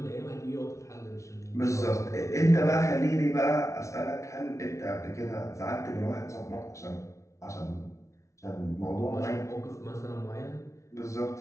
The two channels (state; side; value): late; right; 0.14 ms